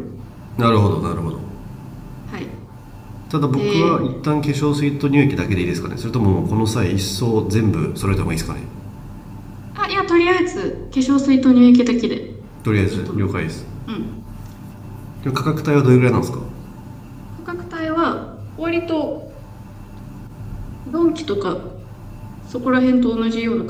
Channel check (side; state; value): both; identical; correlation 1.00